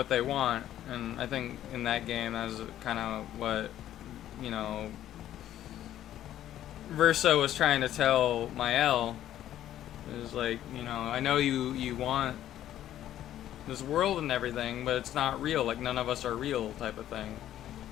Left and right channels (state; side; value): quieter; right; 12.1 dB